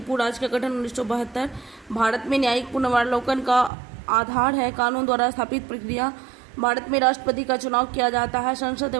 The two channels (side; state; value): left; drops out; at 3.7 s